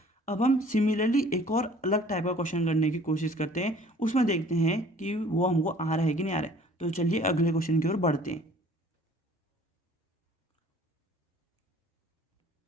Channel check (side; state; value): both; normal; correlation 0.52